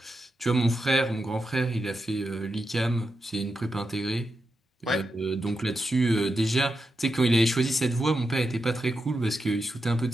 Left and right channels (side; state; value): both; normal; correlation 0.88